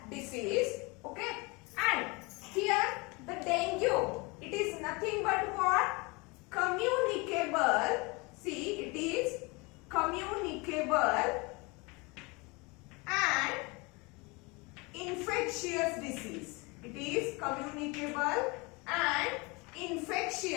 disease. Okay, and here the dengue, it is nothing but what? Communicable. See, it is communicable and infectious disease. It is communicable and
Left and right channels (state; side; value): quieter; right; 27.0 dB